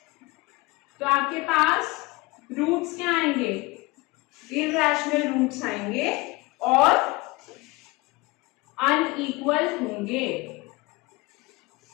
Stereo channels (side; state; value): right; quieter; 23.3 dB